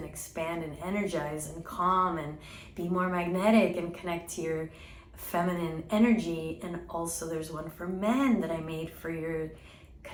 expand and energize and calm and be more magnetic and connect to your feminine energy. And also there's one for men that I made for your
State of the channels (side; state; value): both; identical; correlation 1.00